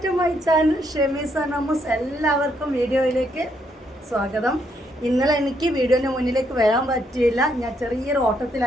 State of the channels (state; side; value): normal; both; correlation 0.74